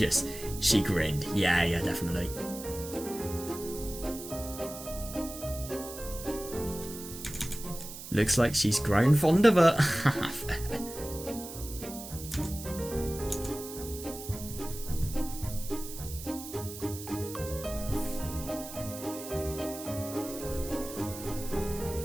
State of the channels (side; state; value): right; noise; hiss, 11 dB below the sound